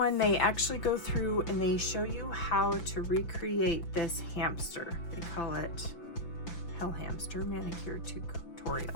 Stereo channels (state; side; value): late; right; 5.9 ms